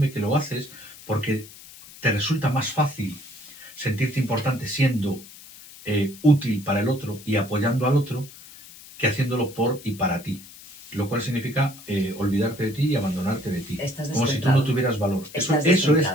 que lo haces porque te resulta más fácil sentirte importante siendo útil para el otro y apoyando al otro que haciéndolo por y para ti. Lo cual significa olvidarte de ti y abandonarte de ti. Como si tú no tuvieras valor. Eso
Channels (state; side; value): noise; left; hiss, 19 dB below the sound